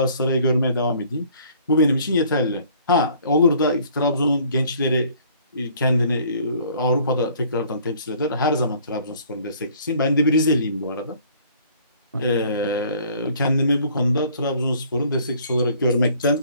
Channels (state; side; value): inverted; both; correlation -0.56